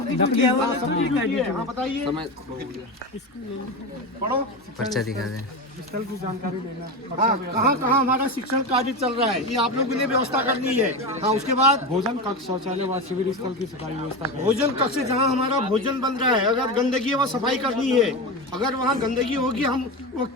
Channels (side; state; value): both; normal; correlation 0.21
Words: ड्यूटी है। हाँ बताइए, पढ़ो, पर्चा दिखा दें। स्थल की जानकारी लेना। हाँ, कहाँ कहाँ हमारा शिक्षण कार्य चल रहा है ये आप लोगों ने व्यवस्था करनी है। हाँ, उसके बाद भोजन कक्ष, शौचालय व शिविर स्थल की सफाई व्यवस्था करें। भोजन कक्ष जहाँ हमारा भोजन बन रहा है, अगर गंदगी है वहाँ सफाई करनी है। अगर वहाँ गंदगी होगी हम वो